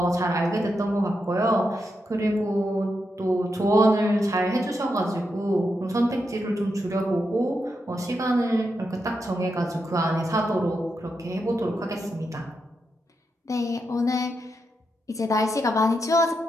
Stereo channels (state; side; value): normal; both; correlation 0.85